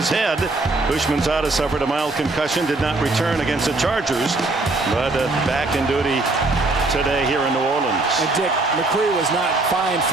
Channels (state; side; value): quieter; left; 3.2 dB